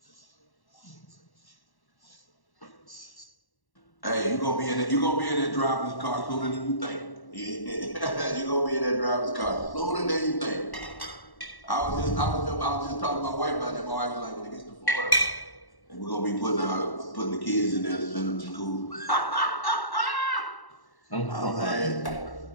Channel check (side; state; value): right; late; 1.1 ms